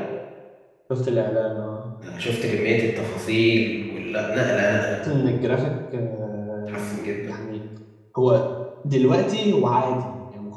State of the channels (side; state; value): both; identical; correlation 1.00